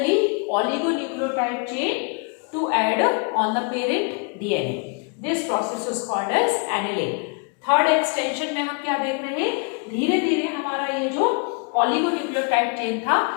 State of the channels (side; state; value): right; quieter; 34.4 dB